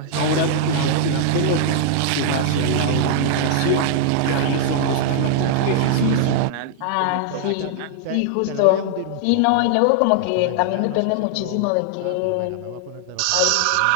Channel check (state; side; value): different; both; correlation -0.01